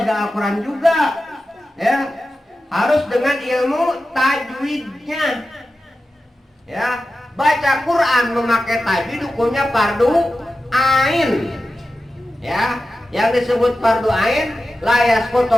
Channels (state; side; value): normal; both; correlation 0.93